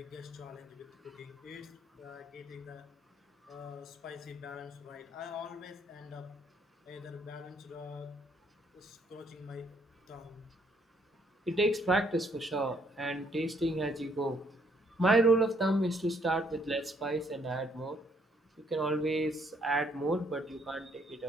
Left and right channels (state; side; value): normal; both; correlation 0.68